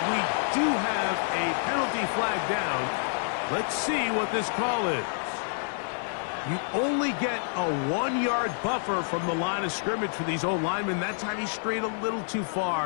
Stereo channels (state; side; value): silent; right; 59 dB below the other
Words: We do have a penalty flag down. Let's see what this call is. You only get a 1-yard buffer from the line of scrimmage for these old linemen. That time he strayed a little too